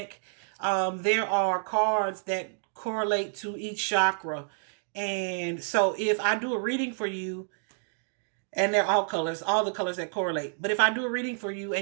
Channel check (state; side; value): silent; left; digital silence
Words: there are cards that correlate to each chakra. And so if I do a reading for you, and they're all colors, all the colors that correlate. But if I do a reading for you